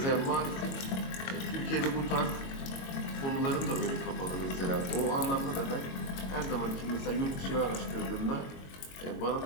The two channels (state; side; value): late; right; 22 ms